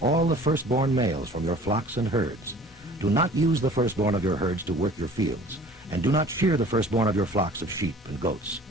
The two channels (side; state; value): both; normal; correlation 0.48